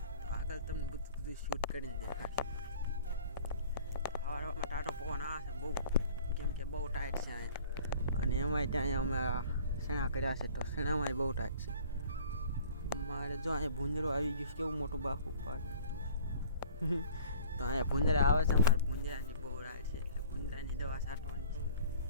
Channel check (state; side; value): inverted; both; correlation -0.48